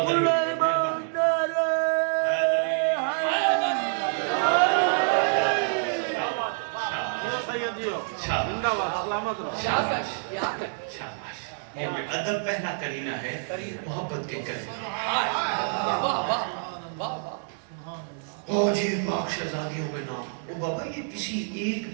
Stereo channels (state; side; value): silent; left; digital silence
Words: ادب پہلا کرینہ ہے محبت کے کرینہ. جی پاک شہزادیوں کے نام. او بابا یہ کسی ایک